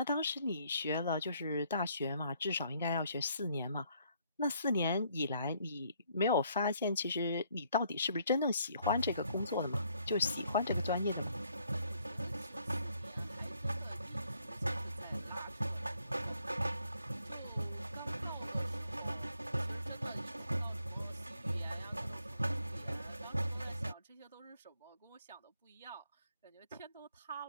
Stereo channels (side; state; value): both; inverted; correlation -0.69